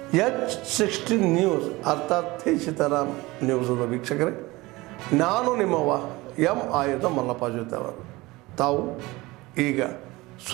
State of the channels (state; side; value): quieter; left; 21.1 dB